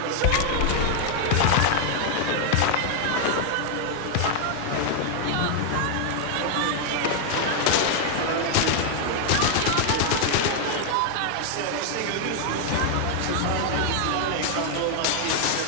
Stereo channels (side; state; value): both; different; correlation 0.00